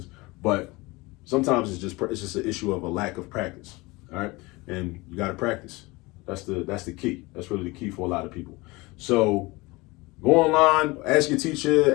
But sometimes it's just an issue of a lack of practice. All right, and you got to practice. That's the key. That's really the key for a lot of people. So go online, ask your teacher,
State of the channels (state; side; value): quieter; right; 23.2 dB